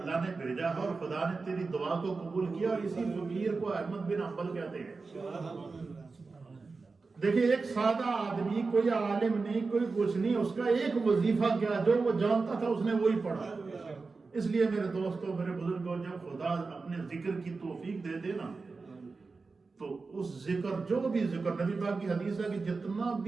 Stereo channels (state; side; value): quieter; left; 4.2 dB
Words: نے بھیجا ہے اور خدا نے تیری دعا کو قبول کیا، اور اسی فقیر کو احمد بن حنبل کہتے ہیں۔ دیکھیں ایک سادہ آدمی، کوئی عالم نہیں، کوئی کچھ نہیں، اس کا ایک وظیفہ کیا جو وہ جانتا تھا اس نے وہی پڑھا۔ اس لیے میرے دوستوں، میرے بزرگوں، جب خدا اپنے ذکر کی توفیق دے دے نا تو اس ذکر، جو بھی ذکر، نبی پاک کی حدیث ہے کہ جتنا